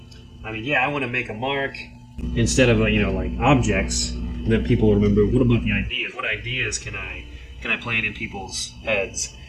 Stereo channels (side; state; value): both; identical; correlation 1.00